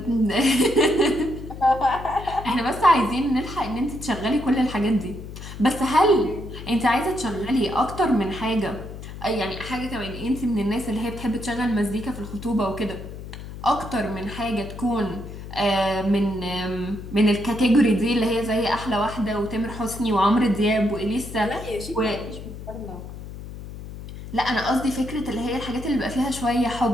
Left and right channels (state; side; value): noise; left; hum, 11 dB below the sound